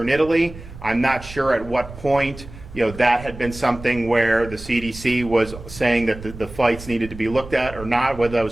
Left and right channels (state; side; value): noise; right; rumble, 15 dB below the sound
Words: Italy. I'm not sure at what point that had been something where the CDC was saying that the flights needed to be looked at or not, whether that